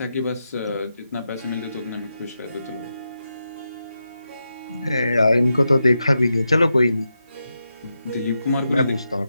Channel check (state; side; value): inverted; both; correlation -0.87